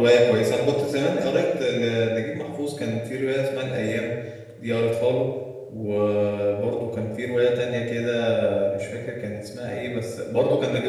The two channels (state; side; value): identical; both; correlation 1.00